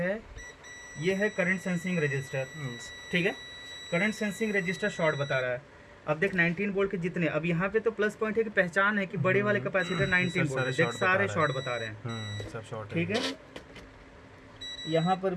ये है करंट सेंसिंग रजिस्टर, ठीक है। करंट सेंसिंग रजिस्टर शॉर्ट बता रहा है। अब देख 19 वोल्ट के जितने, अब यहाँ पे तो प्लस पॉइंट है कि पहचान है कि बड़े वाले कैपेसिटर 19 वोल्ट, देख सारे शॉर्ट बता रहे हैं, सब शॉर्ट, ठीक है। यहाँ पर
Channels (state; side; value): identical; both; correlation 1.00